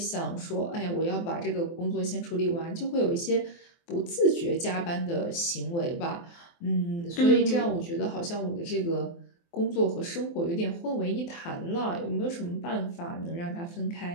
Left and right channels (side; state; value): right; late; 23 ms